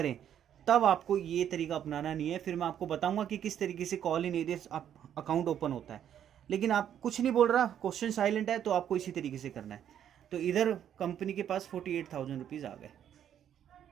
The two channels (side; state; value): left; quieter; 9.8 dB